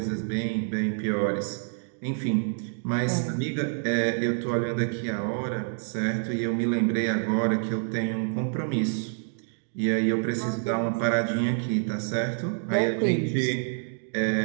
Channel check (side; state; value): left; silent; 60 dB below the other